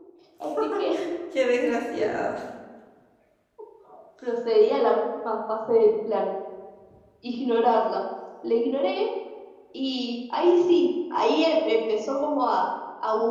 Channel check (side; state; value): both; identical; correlation 1.00